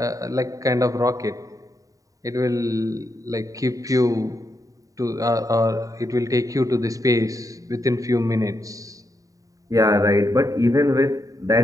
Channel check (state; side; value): late; left; 0.16 ms